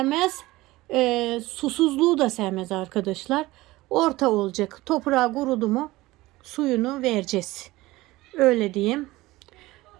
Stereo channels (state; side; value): quieter; left; 19.0 dB